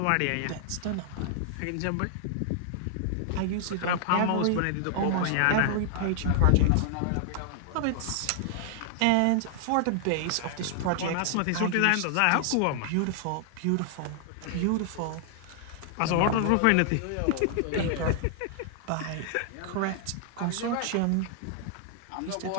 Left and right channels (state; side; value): different; both; correlation -0.01